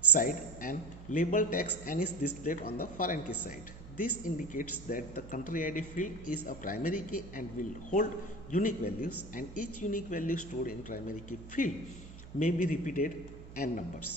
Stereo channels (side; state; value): right; noise; hum, 16 dB below the sound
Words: side and label text N is displayed on the foreign key side. This indicates that the country ID field is a primary key and will hold unique values, and each unique value stored in primary key field may be repeated n